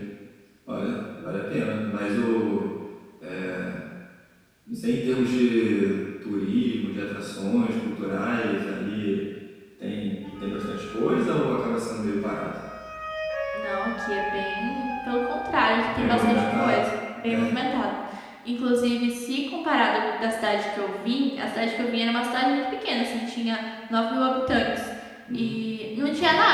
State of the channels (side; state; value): both; identical; correlation 1.00